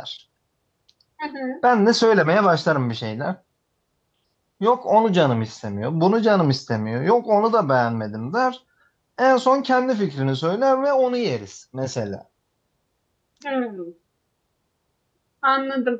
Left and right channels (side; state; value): both; identical; correlation 1.00